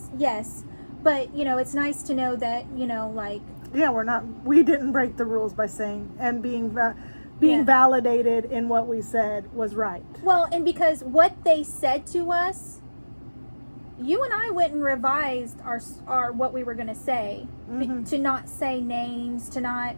But, it's nice to know that, Yeah, we didn't break the rules by saying, and being validated in what we said was right. Well, and because what they said to us, you and I went and revised our what we were going to say, to not say names, to not,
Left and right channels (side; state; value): both; inverted; correlation -1.00